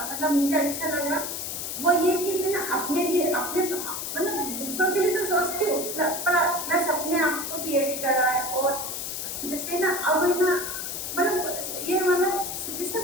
मतलब मुझे अच्छा लगा, वो ये कि मैं ना अपने लिए अपने मतलब दूसरों के लिए तो सोचती हूँ प्लस अपने आप को भी ऐड करा है। और जैसे ना अब है ना मतलब ये मतलब जिसे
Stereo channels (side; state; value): left; noise; hiss, 5 dB below the sound